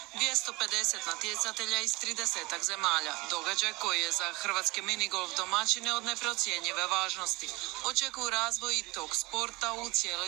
250 natjecatelja iz 30 zemalja. Događaj koji je za hrvatske minigolf domaćine od neprocjenjive važnosti. Očekuju razvoj tog sporta u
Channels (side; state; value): left; quieter; 23.4 dB